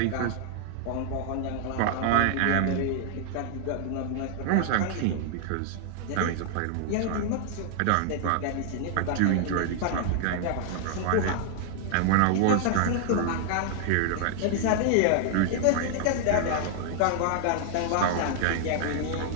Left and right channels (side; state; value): both; different; correlation 0.00